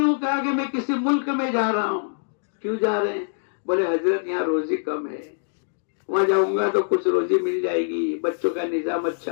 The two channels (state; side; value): silent; right; digital silence